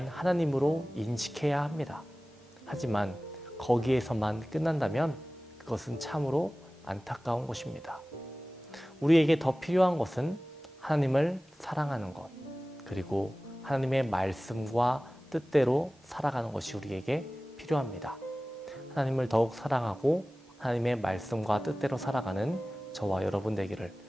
하나님으로 인식해야 합니다. 하지만 거기에서만 끝난다면 그것은 참으로 안타까운 것입니다. 우리에게 더 필요한 것은 하나님을 사랑하는 것, 그리고 하나님의 말씀과 뜻대로 살아가는 것이 우리에게 필요합니다. 하나님을 더욱 사랑하고 하나님의 말씀과 뜻대로 살아가는 저와 여러분 되기를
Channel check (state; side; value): normal; both; correlation 0.97